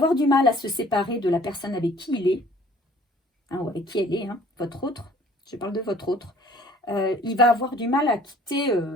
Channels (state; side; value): normal; both; correlation 0.54